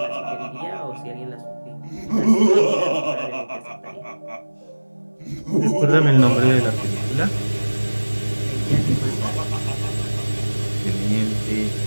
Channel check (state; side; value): inverted; both; correlation -1.00